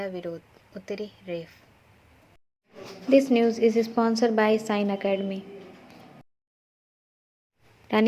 विरोध, उतरी रेफ। This news is sponsored by Sign Academy.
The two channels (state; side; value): identical; both; correlation 1.00